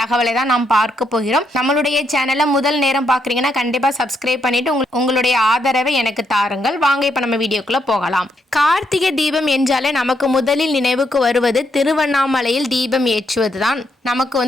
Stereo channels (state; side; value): normal; both; correlation 0.77